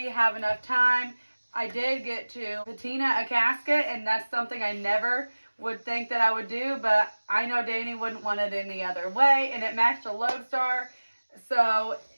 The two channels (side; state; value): both; inverted; correlation -1.00